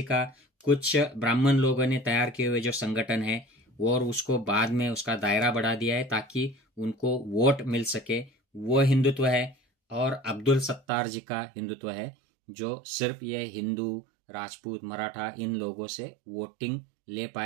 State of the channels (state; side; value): drops out; left; at 10.8 s